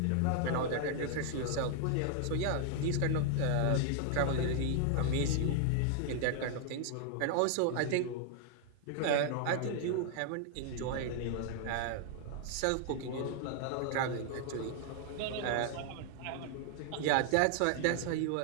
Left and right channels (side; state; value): both; different; correlation 0.00